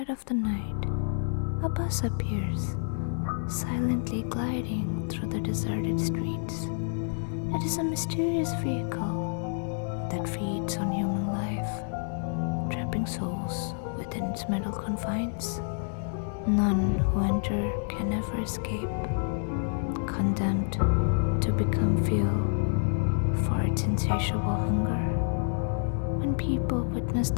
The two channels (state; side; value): silent; right; digital silence